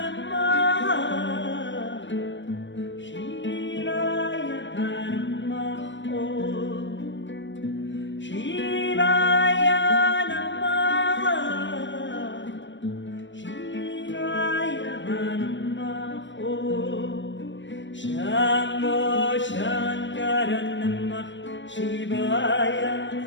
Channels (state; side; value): late; right; 0.54 ms